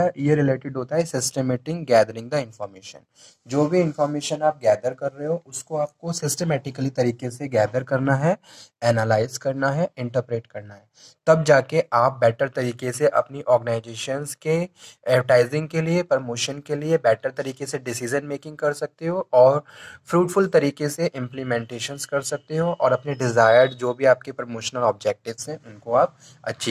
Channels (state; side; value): identical; both; correlation 1.00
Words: है ये रिलेटेड होता है सिस्टमेटिक गैदरिंग द इंफॉर्मेशन। जो भी इंफॉर्मेशन आप गैदर कर रहे हो उसको आपको सिस्टमेटिकली तरीके से गैदर करना है, एनालाइज करना है, इंटरप्रेट करना है, तब जाके आप बेटर तरीके से अपनी ऑर्गेनाइजेशंस के एडवर्टाइजिंग के लिए, प्रमोशन के लिए बेटर तरीके से डिसीजन मेकिंग कर सकते हो और फ्रूटफुल तरीके से इम्प्लीमेंटेशंस कर सकते हो और अपने डिज़ायर्ड जो भी आपके प्रमोशनल ऑब्जेक्टिव्स हैं उनको आप